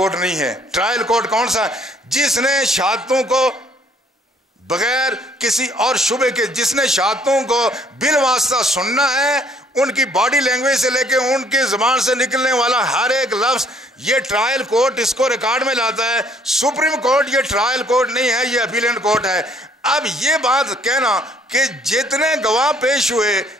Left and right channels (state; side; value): normal; both; correlation 0.62